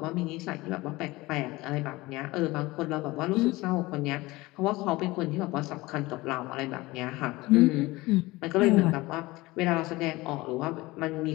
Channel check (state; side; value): quieter; right; 20.5 dB